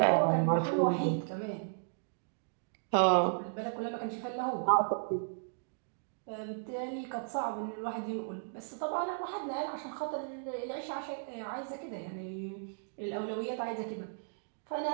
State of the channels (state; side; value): silent; left; digital silence